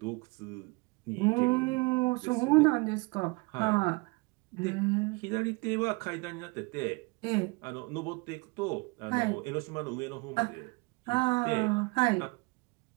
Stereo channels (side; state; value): left; quieter; 27.6 dB